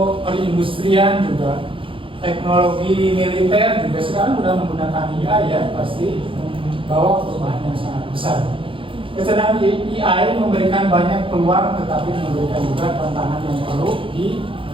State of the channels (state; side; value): late; left; 0.25 ms